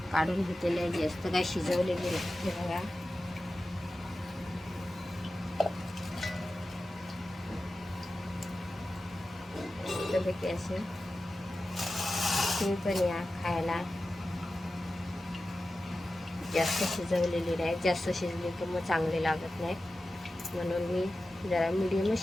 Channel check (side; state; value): both; normal; correlation 0.94